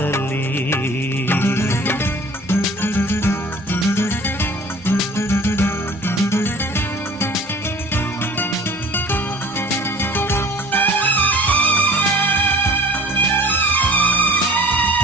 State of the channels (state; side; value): normal; both; correlation 0.46